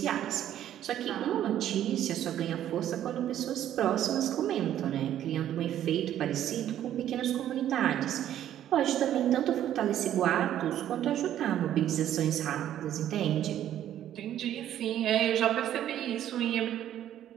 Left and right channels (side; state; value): left; quieter; 11.4 dB